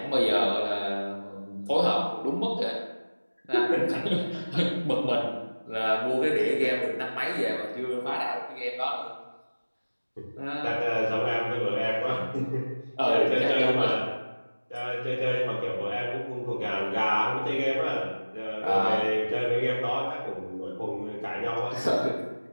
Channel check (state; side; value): inverted; both; correlation -1.00